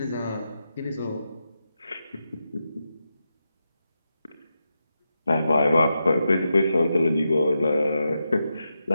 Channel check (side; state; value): both; inverted; correlation -0.88